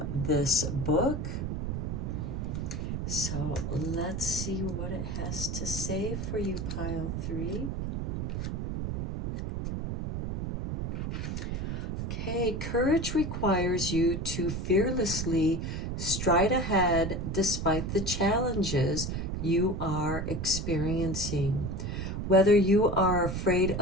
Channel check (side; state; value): right; noise; rumble, 3 dB below the sound